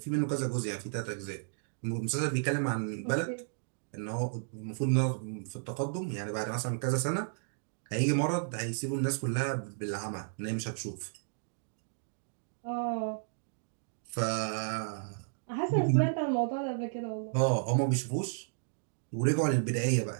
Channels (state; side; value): silent; left; digital silence